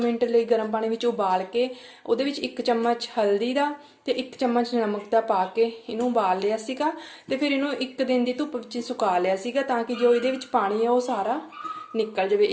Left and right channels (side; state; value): both; identical; correlation 1.00